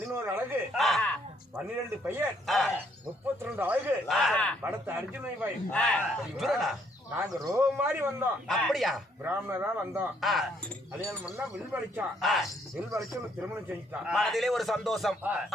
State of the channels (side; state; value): both; normal; correlation 0.68